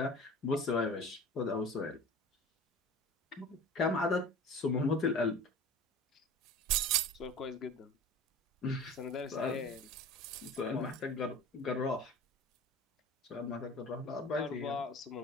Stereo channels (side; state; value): both; normal; correlation 0.39